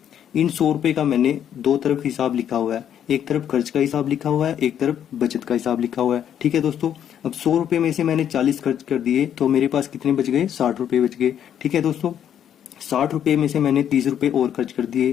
इन 100 रुपए का मैंने दो तरफ हिसाब लिखा हुआ है, एक तरफ खर्च का हिसाब लिखा हुआ है, एक तरफ बचत का हिसाब लिखा हुआ है। ठीक है दोस्तों, अब 100 रुपए में से मैंने 40 खर्च कर दिए तो मेरे पास कितने बच गए, 60 रुपए बच गए। ठीक है दोस्तों, 60 रुपए में से मैंने 30 रुपए और खर्च कर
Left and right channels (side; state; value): right; quieter; 9.6 dB